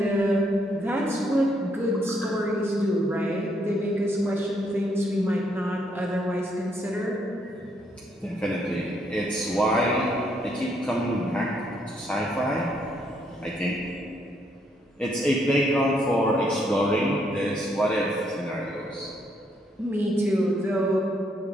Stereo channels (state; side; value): normal; both; correlation 0.73